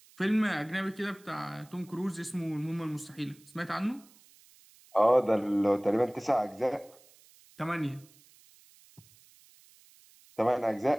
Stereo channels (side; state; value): right; noise; hiss, 27 dB below the sound